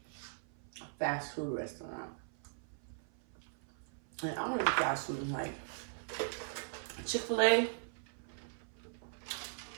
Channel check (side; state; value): left; silent; 52 dB below the other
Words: a fast food restaurant. And I don't eat fast food like Chick-fil-A.